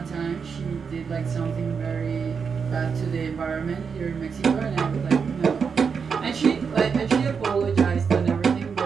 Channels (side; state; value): left; quieter; 6.0 dB